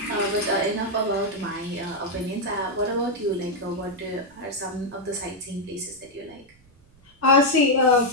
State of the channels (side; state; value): right; noise; rumble, 30 dB below the sound